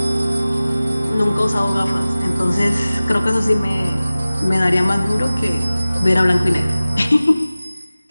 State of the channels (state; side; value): inverted; both; correlation -0.97